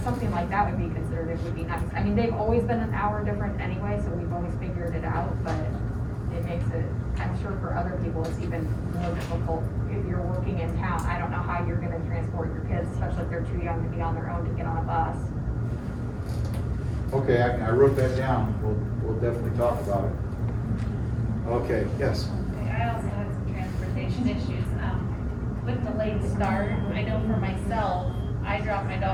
something like that would be considered, it would be nice. I mean, they've always been an hour different anyway, so we've always figured it out, but it makes it, I'm sure for other people, it's even more difficult if you're working in town. I don't know how you're gonna transport your kids, especially if they're too young to be on their own to get on a bus. Okay, I wrote that down, we'll definitely talk about it. Okay, yes. I also had some transportation issues, with the late start. I know for myself, I dropped my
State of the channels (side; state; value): both; identical; correlation 1.00